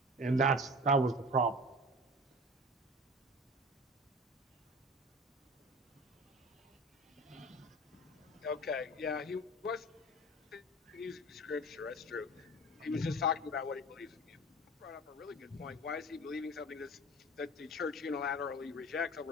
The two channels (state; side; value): normal; both; correlation 0.38